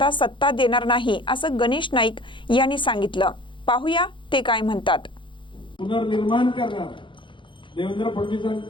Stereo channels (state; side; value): late; right; 0.24 ms